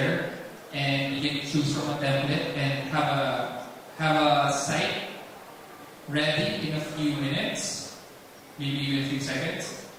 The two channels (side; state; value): both; identical; correlation 1.00